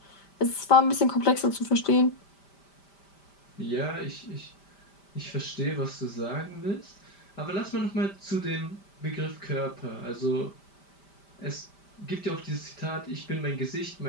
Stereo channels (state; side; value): late; right; 5.1 ms